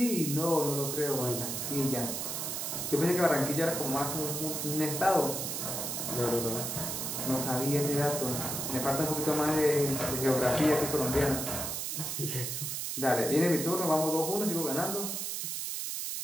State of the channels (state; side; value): noise; right; hiss, 3 dB below the sound